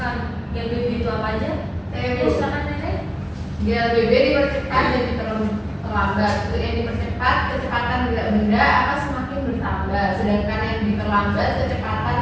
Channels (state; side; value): identical; both; correlation 1.00